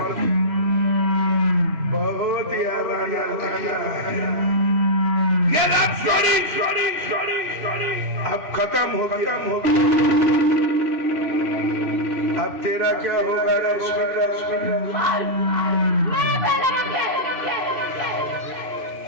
बहुत यारा अब खत्म हो गया अब तेरा क्या होगा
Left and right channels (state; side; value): late; left; 3.0 ms